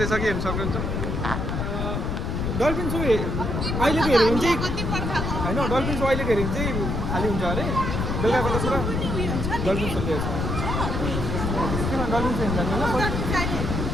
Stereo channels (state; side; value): noise; left; rumble, 1 dB below the sound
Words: हेर्नु सक्नुहुन्छ. डल्फिन सो अहिलेको हेऱ्यो भने चाहिँ होइन. डल्फिन सो अहिलेको हेऱ्यो भने चाहिँ खाली हुन्छ अरे. बेलुकाको त पुरा डल्फिन सो लिएको छ. किन डल्फिन सो हेर्नु